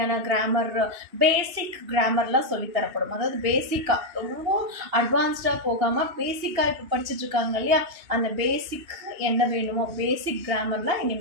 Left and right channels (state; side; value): late; left; 2.8 ms